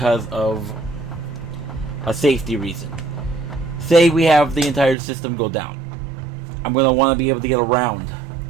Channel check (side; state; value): left; drops out; at 5.0 s